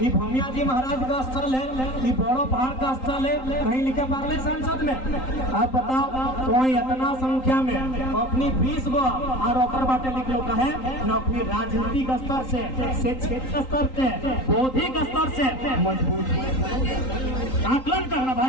भूमिया जी महाराज का स्थल है, ये बड़ो पहाड़ का स्थल है, कहीं लिखे पार्ले सांसद में। आप बताओ तो इतना संख्या में अपनी 20 गो और ओकर बाटे लिख लो कहे न अपनी राजनीतिक स्तर से क्षेत्र स्तर से बौद्धिक स्तर से मजबूत आकलन करना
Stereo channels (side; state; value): right; late; 3.8 ms